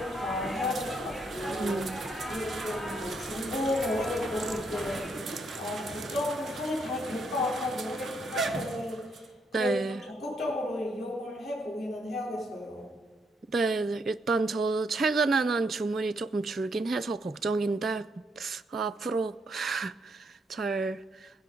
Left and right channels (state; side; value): normal; both; correlation 0.75